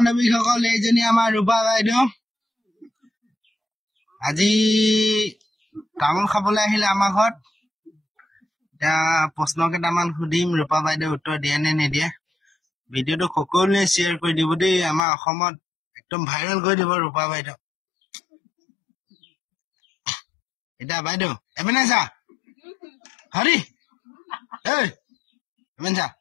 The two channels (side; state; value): right; drops out; at 15.0 s